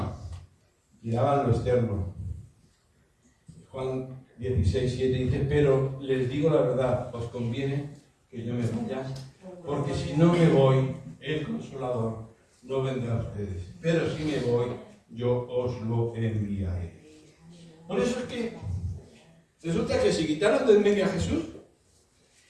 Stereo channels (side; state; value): both; identical; correlation 1.00